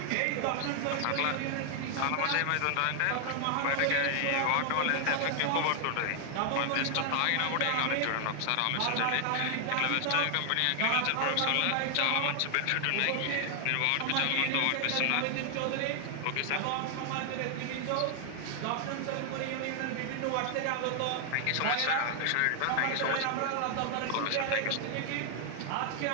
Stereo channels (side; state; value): both; different; correlation 0.00